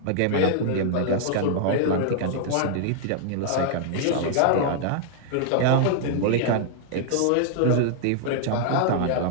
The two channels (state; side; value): different; both; correlation -0.01